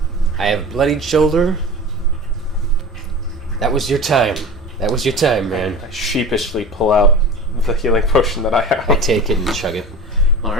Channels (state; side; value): normal; both; correlation 0.34